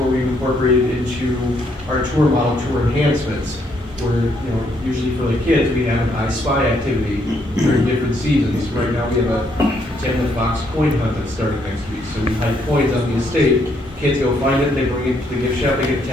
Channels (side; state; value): both; normal; correlation 0.72